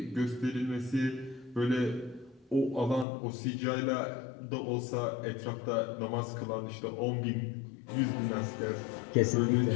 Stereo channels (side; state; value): right; drops out; at 3.1 s